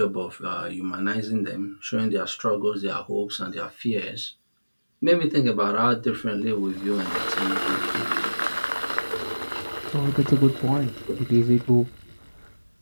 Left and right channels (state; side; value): inverted; both; correlation -1.00